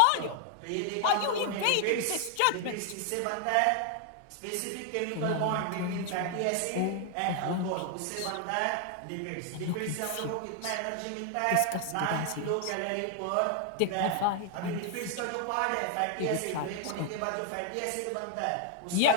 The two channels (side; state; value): both; different; correlation 0.00